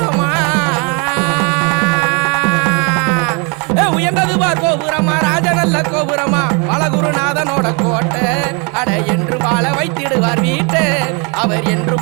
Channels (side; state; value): left; quieter; 33.2 dB